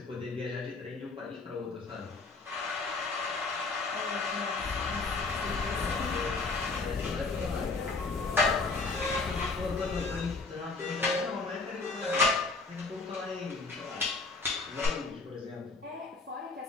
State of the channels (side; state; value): right; quieter; 3.8 dB